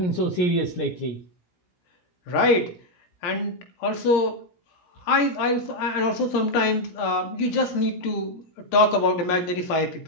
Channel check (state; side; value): late; right; 17 ms